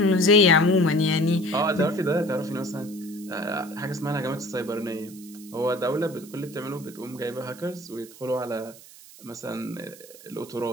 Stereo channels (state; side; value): noise; right; hiss, 20 dB below the sound